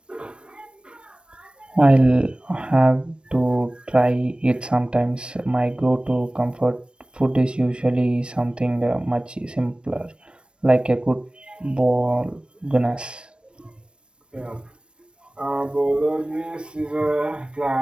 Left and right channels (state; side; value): late; left; 0.056 ms